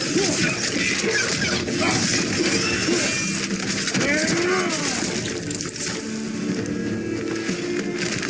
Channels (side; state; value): both; identical; correlation 1.00